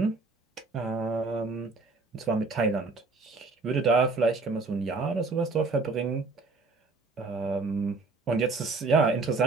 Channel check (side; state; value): left; quieter; 3.9 dB